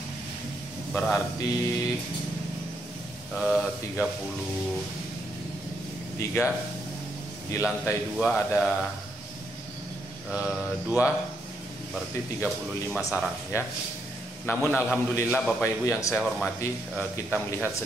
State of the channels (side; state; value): both; normal; correlation 0.77